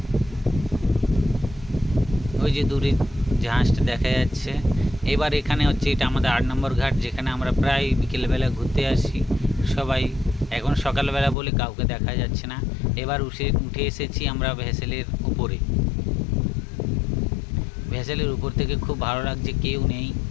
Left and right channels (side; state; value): right; drops out; at 11.4 s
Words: ওই যে দূরে জাহাজটা দেখা যাচ্ছে। এবার এখানে হচ্ছে এটা আমাদের 8 নম্বর ঘাট, যেখানে আমরা প্রায় বিকেলবেলা ঘুরতে আসি সবাই। এখন সকালবেলা বলে কাউকে দেখা যাচ্ছে না। এবার উঠে এসেছি আমরা ভেসেলের উপরে। ভেসেলের উপর থেকে খুব ভালো লাগছে, কেউ নেই,